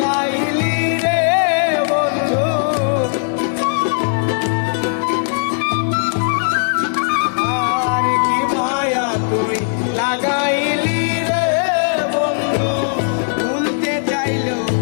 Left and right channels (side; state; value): right; silent; 57 dB below the other